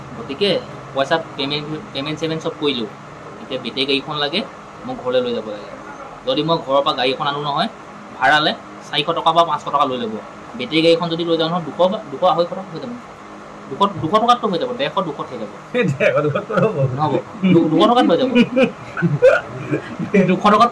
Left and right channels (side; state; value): both; identical; correlation 1.00